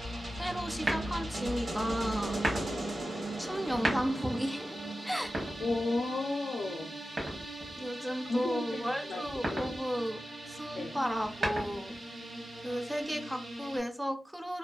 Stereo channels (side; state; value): both; normal; correlation 0.93